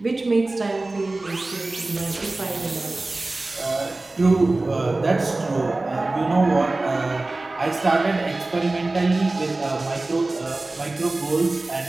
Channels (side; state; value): left; quieter; 3.1 dB